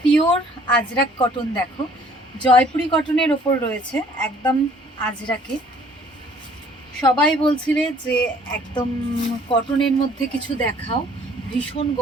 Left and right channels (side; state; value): both; normal; correlation 0.57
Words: পিওর আজরাক কটন। দেখো জয়পুরি কটনের ওপর রয়েছে একদম আজরাকে। সবাই বলছিলে যে একদম কটনের মধ্যে কিছু দেখাও, ভীষণ